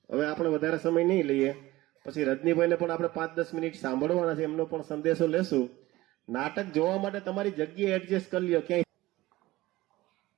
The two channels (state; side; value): quieter; left; 18.2 dB